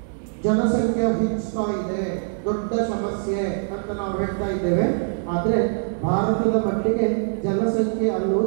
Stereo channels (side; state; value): left; silent; 63 dB below the other